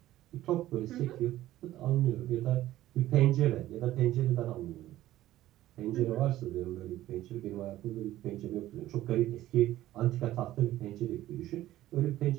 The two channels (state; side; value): quieter; left; 14.6 dB